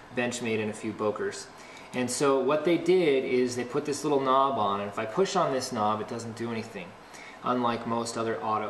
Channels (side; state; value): both; identical; correlation 1.00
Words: Benchmade and a few Bokers. And so what they did is they put this little knob on, and if I push on this knob, it doesn't do anything, unlike most other